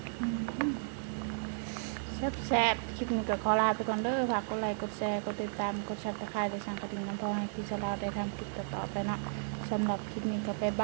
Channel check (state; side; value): silent; left; 55 dB below the other